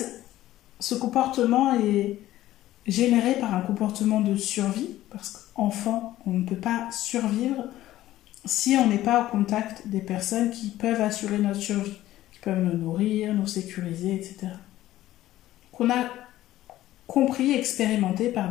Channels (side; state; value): right; quieter; 14.6 dB